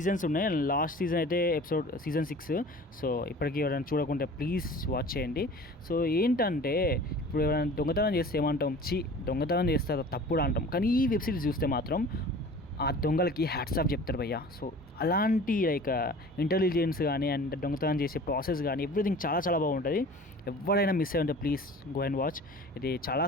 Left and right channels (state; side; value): normal; both; correlation 0.43